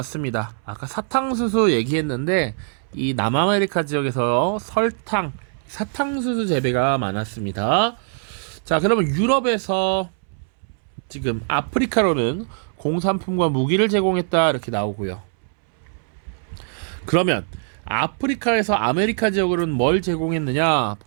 아까 사탕수수 얘기했는데 이 남아메리카 지역에서 설탕, 사탕수수 재배가 많았습니다. 자, 그러면 유럽에서 지금 아프리카로는 공산품과 무기를 제공했다 이렇게 나오고요. 그러면 아프리카에서 아메리카 지역으로는 뭘 제공했느냐?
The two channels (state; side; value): silent; left; 64 dB below the other